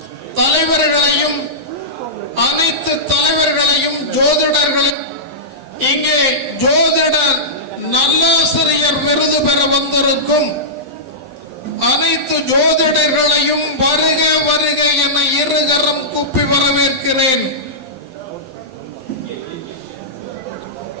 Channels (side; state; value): left; late; 11 ms